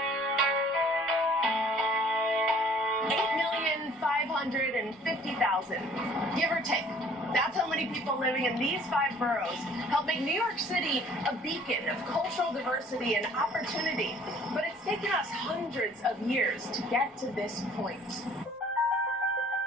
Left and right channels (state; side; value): normal; both; correlation 0.54